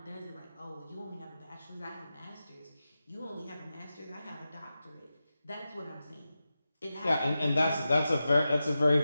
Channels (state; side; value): inverted; both; correlation -0.92